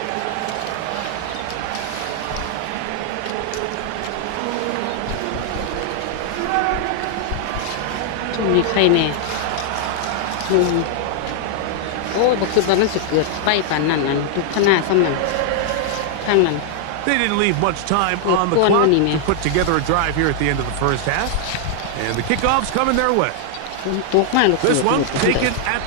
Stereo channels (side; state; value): both; different; correlation 0.00